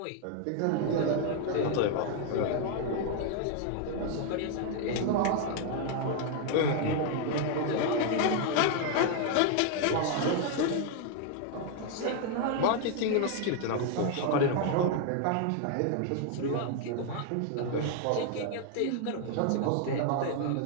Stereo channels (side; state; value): both; different; correlation 0.00